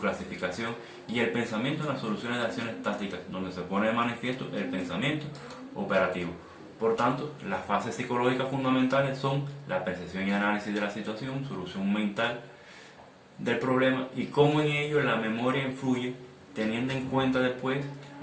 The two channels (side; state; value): both; identical; correlation 1.00